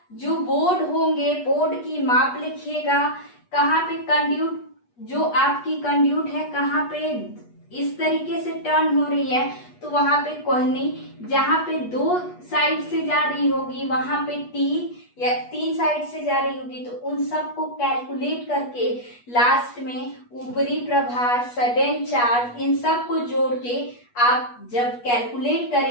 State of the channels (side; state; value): right; late; 8.3 ms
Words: जो बोर्ड होंगे, बोर्ड की माप लिखिएगा, कहाँ पे कंड्यूट, जो आपकी कंड्यूट है कहाँ पे इस तरीके से टर्न हो रही है तो वहां पे कोहनी, जहां पे 2 साइड से जा रही होगी वहां पे टी, या 3 साइड से जा रही होगी तो उन सबको कैलकुलेट करके लास्ट में ऊपरी प्रभार, सडन चार्ज, इन सब को जोड़ के आप जब कैलकुलेट